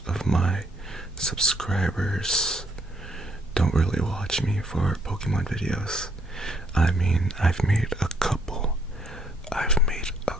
of my subscribers don't really watch me for Pokemon videos. I mean, I've made a couple. I've made a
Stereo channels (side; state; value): both; normal; correlation 0.70